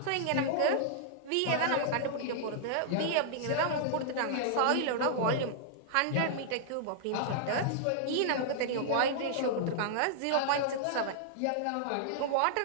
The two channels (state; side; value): different; both; correlation -0.01